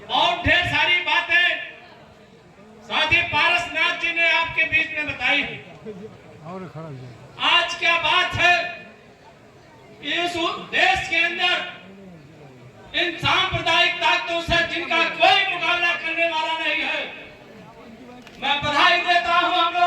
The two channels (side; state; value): both; identical; correlation 1.00